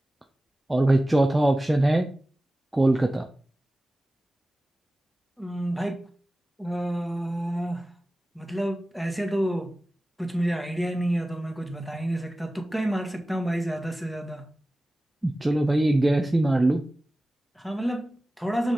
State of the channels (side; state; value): both; normal; correlation 0.96